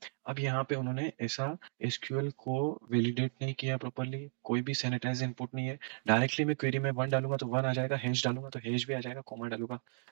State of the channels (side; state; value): left; silent; digital silence